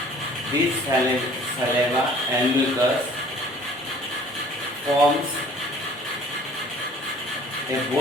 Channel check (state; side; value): normal; both; correlation 0.52